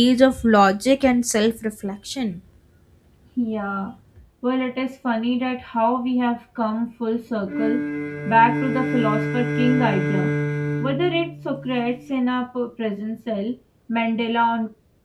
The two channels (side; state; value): both; identical; correlation 1.00